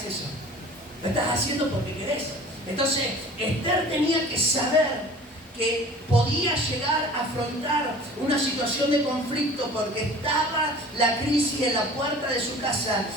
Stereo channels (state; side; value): normal; both; correlation 0.44